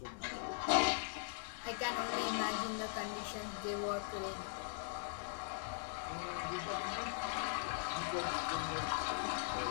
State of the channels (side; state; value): right; silent; digital silence